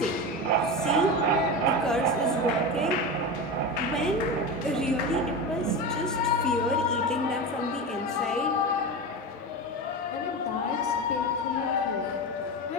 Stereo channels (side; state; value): both; normal; correlation 0.22